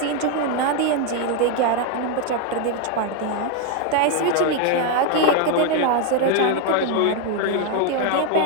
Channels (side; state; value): both; different; correlation 0.01